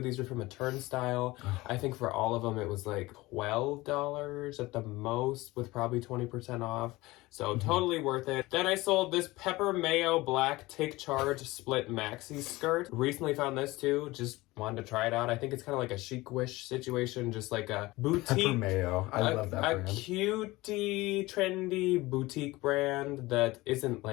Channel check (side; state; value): right; quieter; 20.2 dB